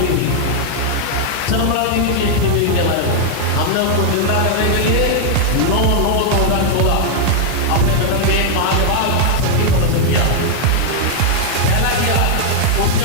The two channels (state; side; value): different; both; correlation 0.00